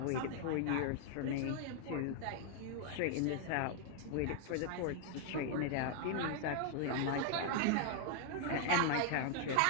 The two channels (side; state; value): both; different; correlation 0.00